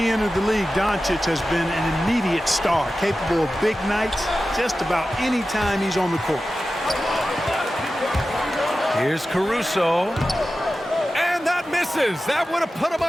entered the league, Doncic has been an immediate star, capable of big nights just about any time he's on the court. Here's Caruso. And that misses. That would have put him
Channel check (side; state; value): both; normal; correlation 0.94